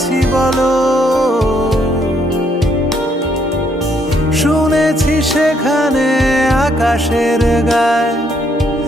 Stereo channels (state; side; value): normal; both; correlation 0.71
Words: বলো, শুনেছি সেখানে আকাশের গায়